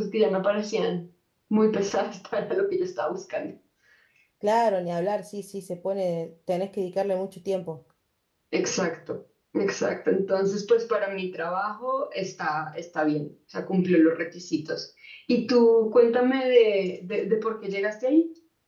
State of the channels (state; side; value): identical; both; correlation 1.00